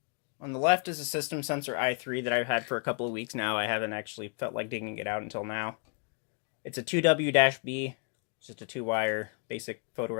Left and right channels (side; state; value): right; quieter; 36.9 dB